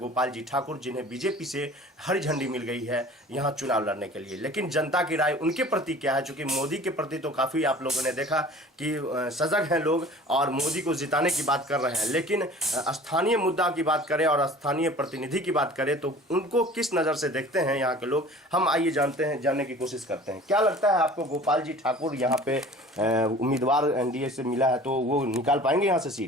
जी ठाकुर, जिन्हें बीजेपी से हरी झंडी मिल गई है यहाँ चुनाव लड़ने के लिए। लेकिन जनता की राय उनके प्रति क्या है? चूंकि मोदी के प्रति तो काफ़ी आप लोगों ने देखा कि सजग हैं लोग और मोदी को जिताने की बात कर रहे हैं, लेकिन स्थानीय मुद्दा की बात करें और स्थानीय प्रतिनिधि की बात करें तो उनको किस नज़र से देखते हैं यहाँ के लोग, हम आइए जानने की कोशिश करते हैं। क्या लगता है आपको, गोपाल जी ठाकुर यहाँ पे उम्मीदवार एनडीए से मिला है तो वो निकाल पाएंगे यहाँ से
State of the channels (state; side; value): normal; both; correlation 0.45